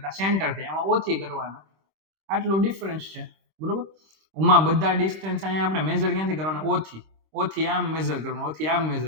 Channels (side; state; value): left; late; 26 ms